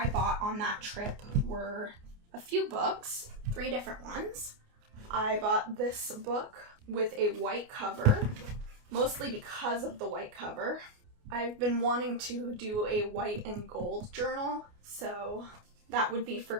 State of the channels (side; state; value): left; late; 29 ms